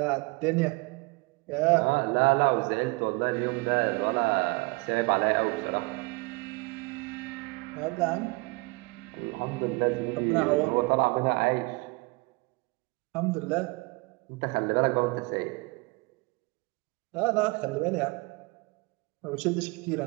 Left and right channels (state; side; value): quieter; left; 27.4 dB